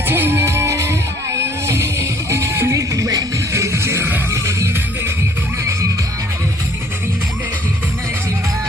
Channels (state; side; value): noise; right; rumble, 22 dB below the sound